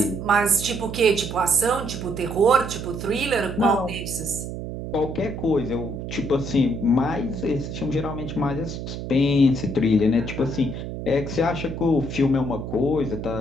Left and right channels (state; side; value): noise; right; hum, 7 dB below the sound